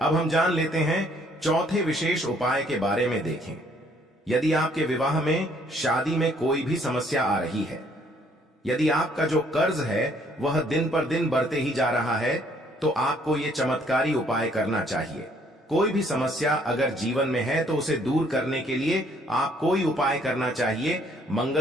अब हम जान लेते हैं चौथे विशेष उपाय के बारे में। देखें, यदि आपके विवाह में, शादी में कोई भी समस्या आ रही है, यदि आपका जो कर्ज है वह दिन पर दिन बढ़ते ही जा रहा है, तो आपको ये चमत्कारी उपाय करना चाहिए। कोई भी समस्या अगर जीवन में है तो उसे दूर करने के लिए आप कोई उपाय करना चाहिए।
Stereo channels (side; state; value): both; normal; correlation 0.64